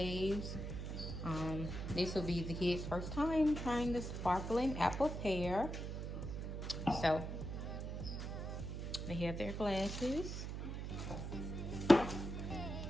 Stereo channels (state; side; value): noise; right; hum, 5 dB below the sound